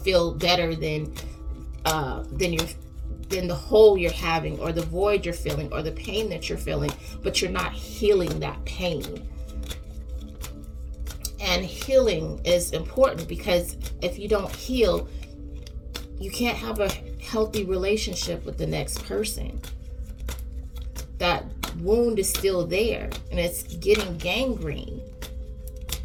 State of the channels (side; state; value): both; identical; correlation 1.00